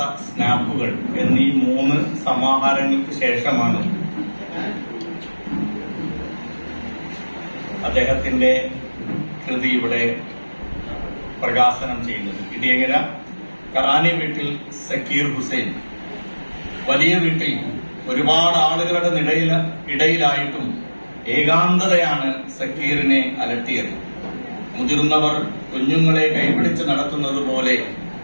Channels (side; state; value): both; inverted; correlation -1.00